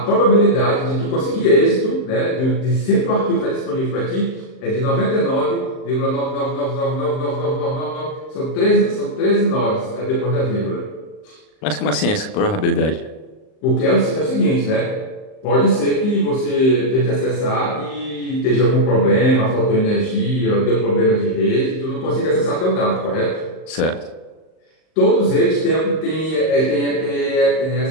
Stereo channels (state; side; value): late; right; 38 ms